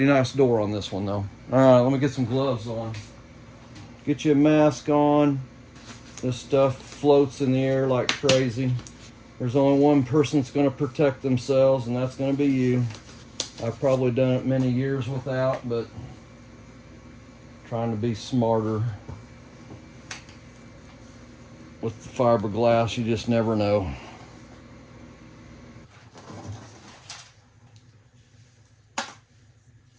nice door on this one though. All right, let me get some gloves on. Get you a mask on. This stuff floats in the air like crazy. There's only one person that's going to protect themselves, and that's going to be you. I've probably done it many years without, but trying to be smarter with the fiberglass. You just never know.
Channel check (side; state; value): both; identical; correlation 1.00